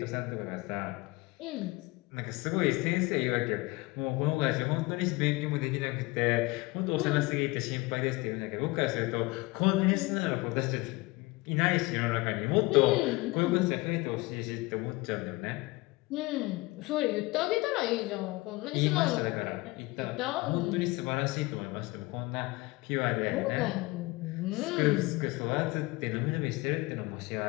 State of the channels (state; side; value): quieter; right; 22.7 dB